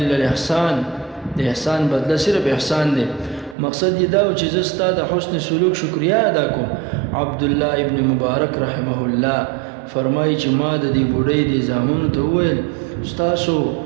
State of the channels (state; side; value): drops out; left; at 3.6 s